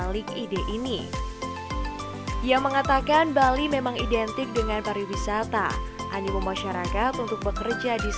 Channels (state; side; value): identical; both; correlation 1.00